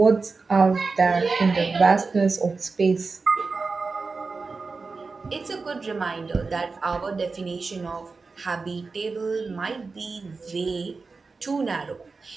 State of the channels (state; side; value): quieter; left; 4.2 dB